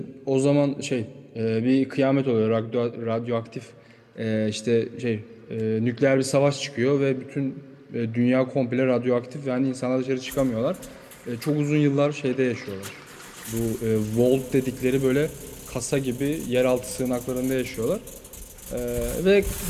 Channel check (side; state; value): both; identical; correlation 1.00